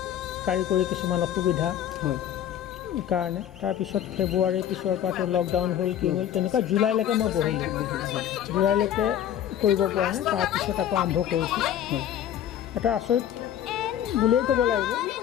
কাৰিকৰী কিছুমান অসুবিধা কাৰণে তাৰপিছত ফেব্ৰুৱাৰীৰ পিছৰ পৰাতো লকডাউন হ'ল, কি হ'ল, তেনেকুৱা জুলাইলৈকে মই বহিলোঁ। জুলাইলৈকে কৰিব পৰা নাই। তাৰপিছত আকৌ আৰম্ভ কৰিছোঁ। এটা আচৰিত বুলিয়েই ক'ব লাগিব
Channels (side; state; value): right; quieter; 10.5 dB